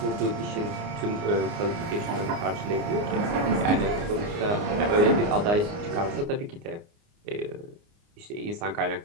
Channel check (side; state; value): left; late; 29 ms